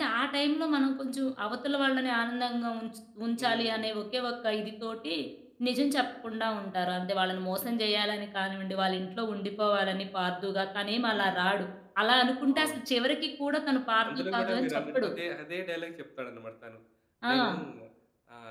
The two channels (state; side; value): identical; both; correlation 1.00